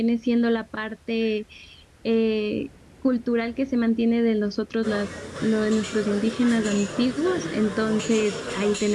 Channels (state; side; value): identical; both; correlation 1.00